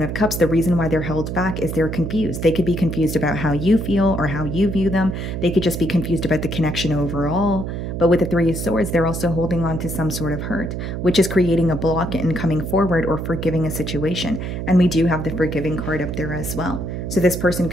of Cups, the reason why they're held back is they're confused. They could be confused about how you feel or how you view them. They could just be confused about the connection overall. But with the Three of Swords, they're also holding on to some sort of hurt, which is creating a block in coming forward or forgiving a situation. And we do have the forgiving card up there as well. So this person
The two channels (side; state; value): right; noise; hum, 4 dB below the sound